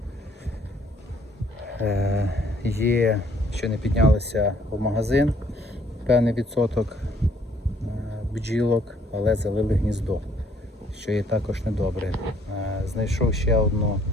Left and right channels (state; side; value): normal; both; correlation 0.63